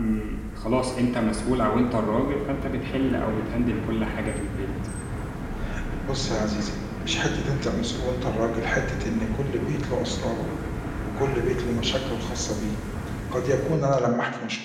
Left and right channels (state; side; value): identical; both; correlation 1.00